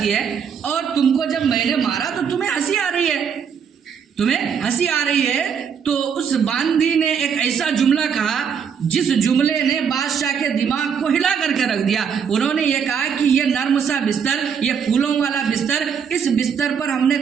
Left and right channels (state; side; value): quieter; left; 7.1 dB